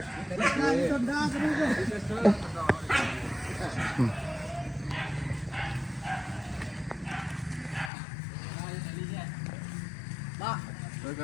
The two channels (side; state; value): right; drops out; at 7.9 s